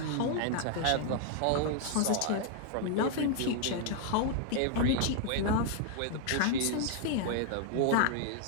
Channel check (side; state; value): both; different; correlation 0.00